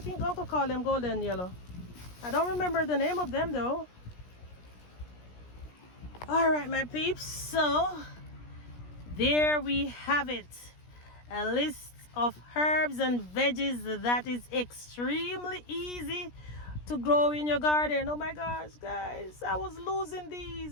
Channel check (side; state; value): right; late; 17 ms